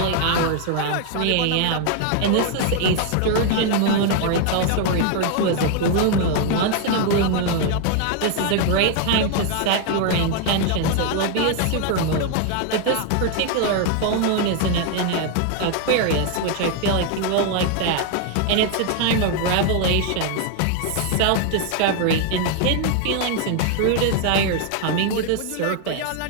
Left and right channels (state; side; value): different; both; correlation 0.00